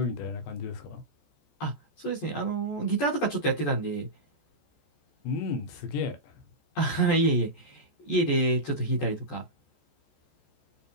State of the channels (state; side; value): late; right; 14 ms